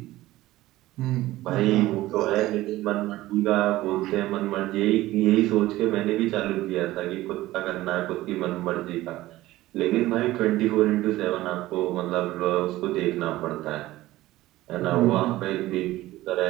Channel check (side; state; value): left; quieter; 16.7 dB